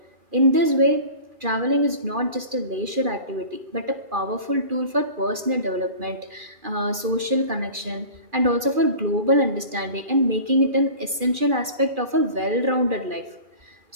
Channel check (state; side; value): late; left; 2.4 ms